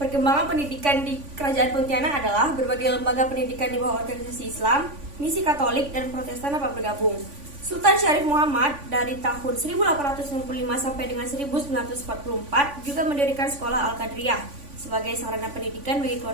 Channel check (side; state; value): left; late; 3.5 ms